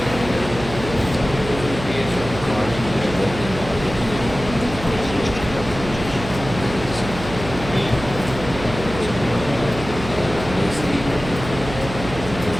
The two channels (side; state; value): right; noise; hum, 10 dB below the sound